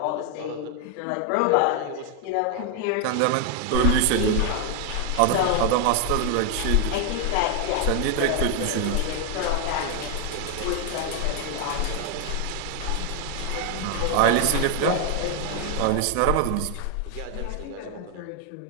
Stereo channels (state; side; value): different; both; correlation 0.01